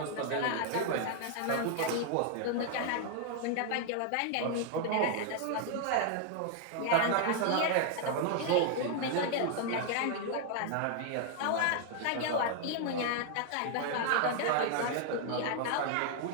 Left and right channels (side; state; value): both; different; correlation 0.00